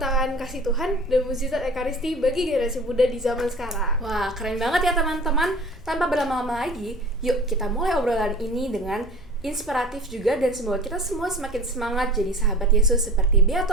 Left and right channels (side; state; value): both; normal; correlation 0.41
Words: kasih Tuhan dan mukjizat Ekaristi bagi generasi muda di zaman sekarang. Wah, keren banget ya teman-teman. Tanpa berlama-lama lagi, yuk kita mulai obrolan ini dengan inspiratif juga dan semoga kita semua semakin semangat jadi sahabat Yesus seperti